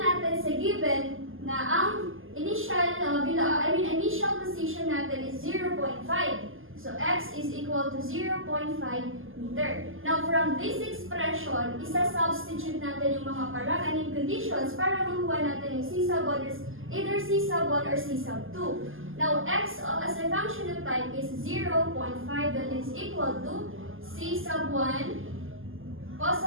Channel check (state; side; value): late; left; 0.59 ms